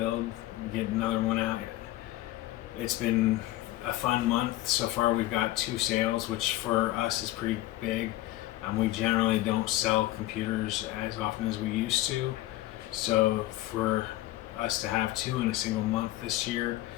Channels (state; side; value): quieter; right; 16.3 dB